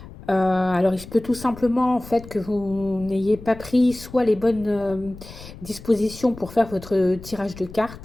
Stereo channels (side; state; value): left; noise; rumble, 16 dB below the sound